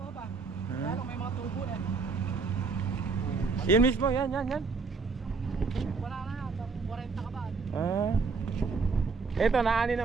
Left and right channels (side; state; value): left; quieter; 4.7 dB